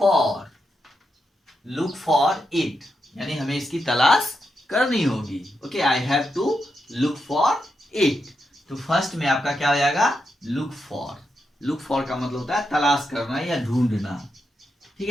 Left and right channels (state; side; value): normal; both; correlation 0.85